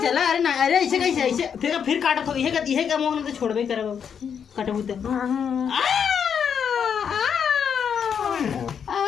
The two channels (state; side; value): quieter; right; 7.5 dB